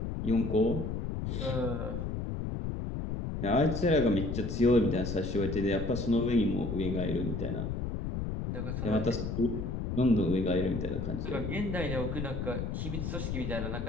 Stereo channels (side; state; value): left; noise; rumble, 3 dB below the sound